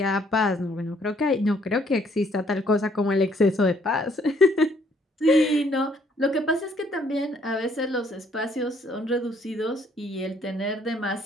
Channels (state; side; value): normal; both; correlation 0.65